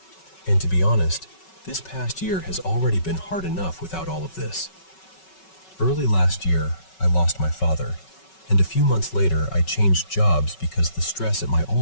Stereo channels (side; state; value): right; late; 5.3 ms